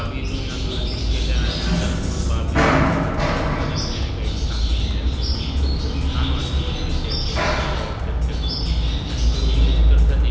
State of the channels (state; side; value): identical; both; correlation 1.00